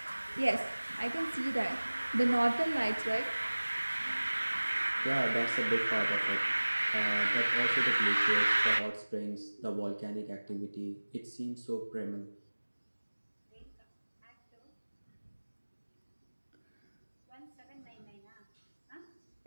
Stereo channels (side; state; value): both; inverted; correlation -1.00